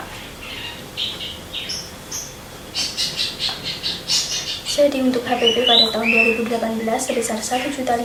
PP pada tahun 2018 sebesar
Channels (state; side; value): identical; both; correlation 1.00